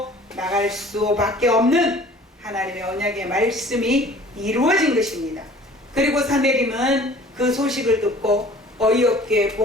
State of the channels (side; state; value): both; normal; correlation 0.49